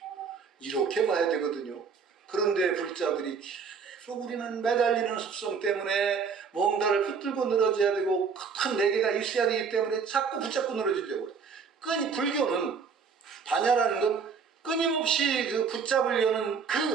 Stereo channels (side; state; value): left; quieter; 5.8 dB